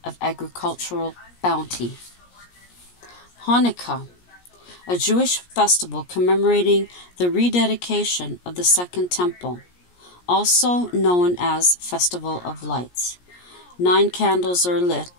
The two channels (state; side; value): late; right; 17 ms